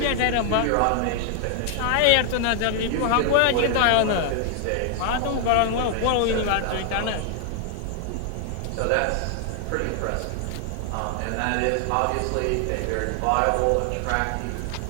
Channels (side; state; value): both; different; correlation 0.00